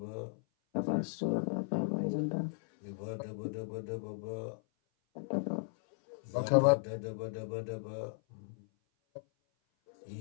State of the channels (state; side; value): silent; right; 54 dB below the other